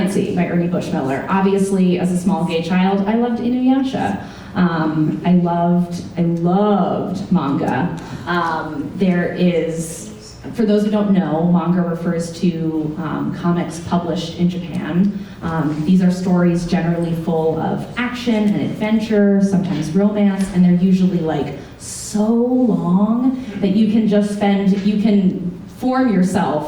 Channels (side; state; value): both; identical; correlation 1.00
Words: by Ernie Bushmiller. Obviously, as a small gay child, I loved Inuyasha. I loved manga. There is, for those who don't know, manga refers to comics published in Japan. These are stories generally full of action and adventure, sometimes romance, and they're usually so long that you can form